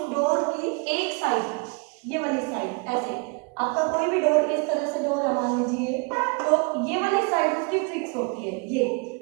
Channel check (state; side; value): quieter; left; 32.2 dB